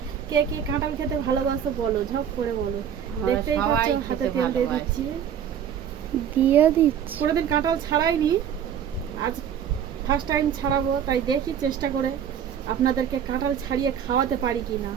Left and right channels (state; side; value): quieter; left; 8.8 dB